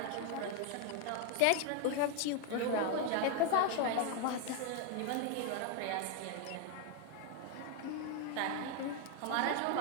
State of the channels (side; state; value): both; different; correlation 0.01